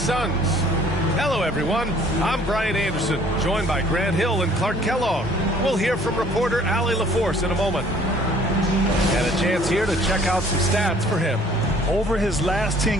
Suns. Hello everyone, I'm Brian Anderson, joined by Grant Hill and Clark Kellogg. We'll hear from reporter Allie LaForce in a moment. And a chance here to check out some stats for him. Over his last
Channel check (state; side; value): normal; both; correlation 0.56